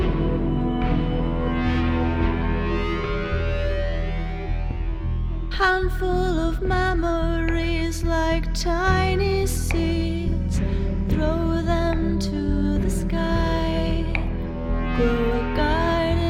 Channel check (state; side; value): identical; both; correlation 1.00